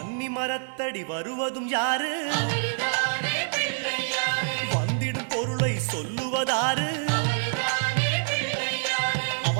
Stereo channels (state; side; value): silent; left; digital silence